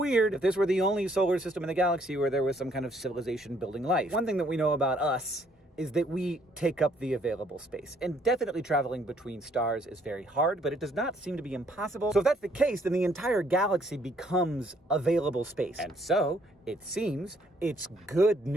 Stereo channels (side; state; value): both; normal; correlation 0.66